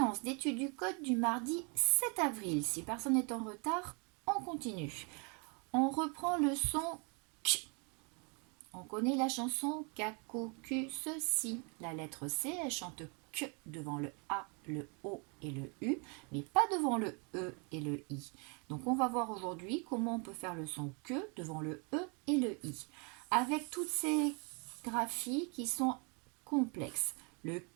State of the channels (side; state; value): left; quieter; 34.2 dB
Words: d'étude du code du mardi 7 avril. Si personne n'est en retard, on continue. On reprend le son K. On connaît la chanson Kako, Q, ceci. La lettre C, elle chante K devant le A, le O et le U, mais pas devant le E et le I. Donc on va voir aujourd'hui comment on peut faire le son K devant le E et le I. Avec toutes ces graphies qui sont complexes. Le